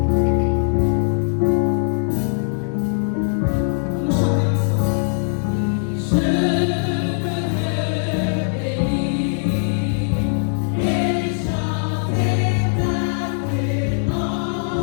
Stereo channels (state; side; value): silent; right; 65 dB below the other